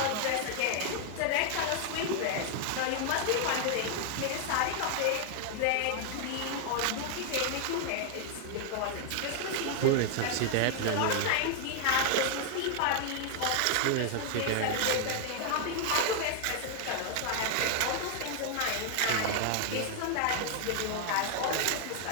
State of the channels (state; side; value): different; both; correlation 0.00